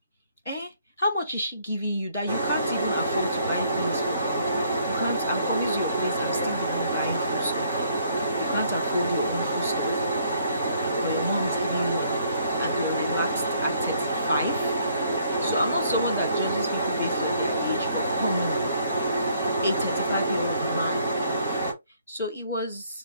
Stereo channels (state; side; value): inverted; both; correlation -0.65